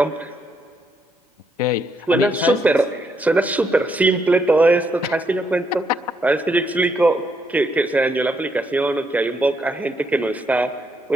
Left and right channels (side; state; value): both; normal; correlation 0.76